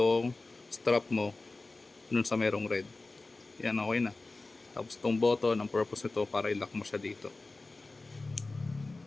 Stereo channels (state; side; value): quieter; right; 3.3 dB